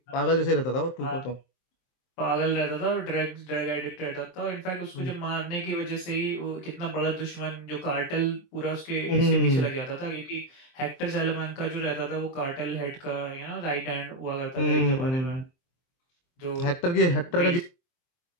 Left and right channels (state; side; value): late; right; 23 ms